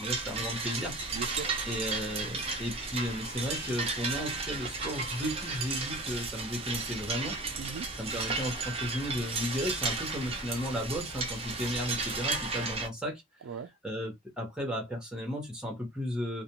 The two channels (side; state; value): both; normal; correlation 0.41